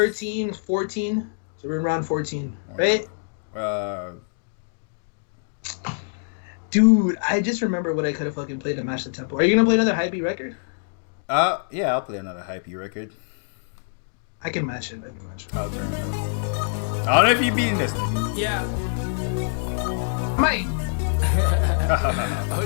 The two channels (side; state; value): right; silent; digital silence